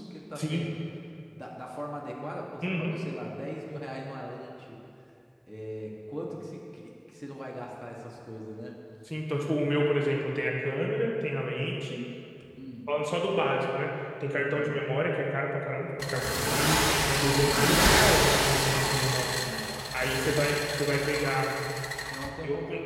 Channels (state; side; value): identical; both; correlation 1.00